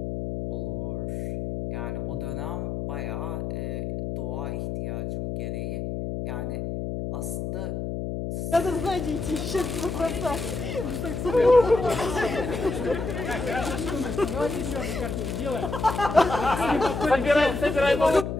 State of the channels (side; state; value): left; noise; hum, 4 dB below the sound